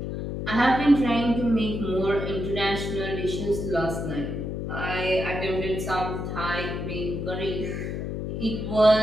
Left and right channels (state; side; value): noise; left; hum, 4 dB below the sound